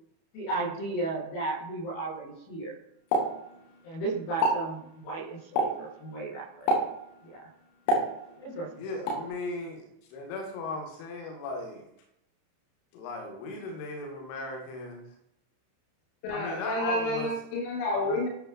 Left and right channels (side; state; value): right; late; 31 ms